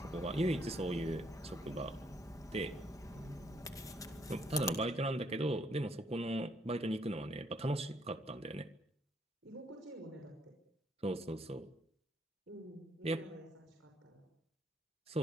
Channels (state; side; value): normal; both; correlation 0.70